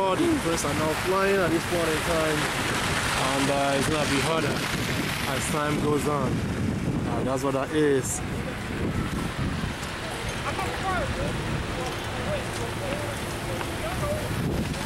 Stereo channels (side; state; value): both; identical; correlation 1.00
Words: the planes are now flying at this point in time, and it's gonna be harder as time goes on. That's what that is.